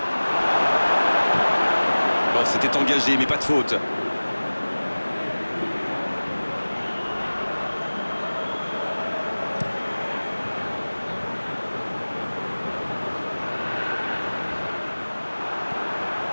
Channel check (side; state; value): both; inverted; correlation -1.00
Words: Bon, c'était engagé, mais pas de faute.